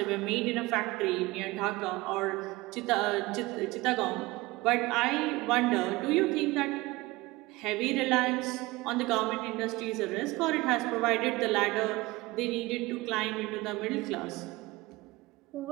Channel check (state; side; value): quieter; left; 21.0 dB